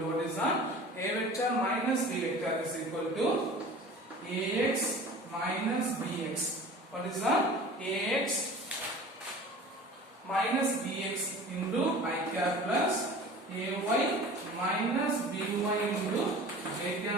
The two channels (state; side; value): normal; both; correlation 0.41